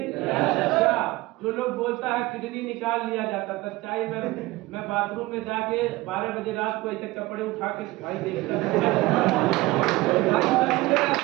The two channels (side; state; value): left; quieter; 19.6 dB